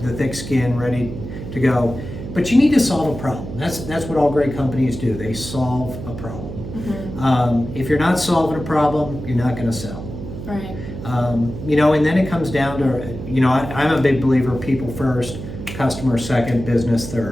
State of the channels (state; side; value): noise; right; hum, 9 dB below the sound